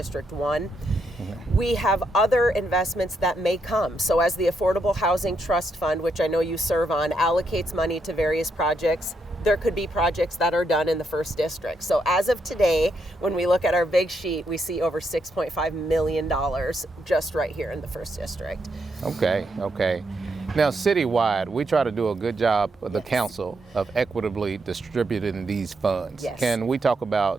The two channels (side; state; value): both; normal; correlation 0.79